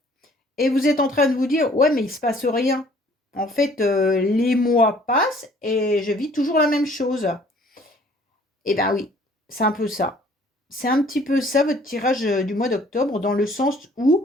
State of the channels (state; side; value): normal; both; correlation 0.56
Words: et vous êtes en train de vous dire: «Ouais, mais il se passe rien». En fait, les mois passent et je vis toujours la même chose. Eh ben oui, c'est un peu ça. C'est un petit peu ça votre tirage, du mois d'octobre, dans le sens